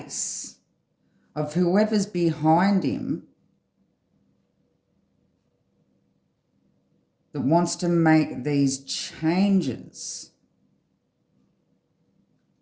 of whoever's behind him that wants to make these changes.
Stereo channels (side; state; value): both; identical; correlation 1.00